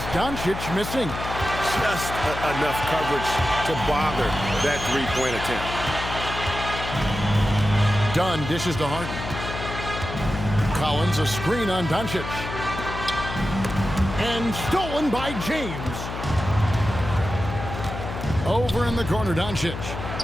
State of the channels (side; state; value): left; noise; hum, 7 dB below the sound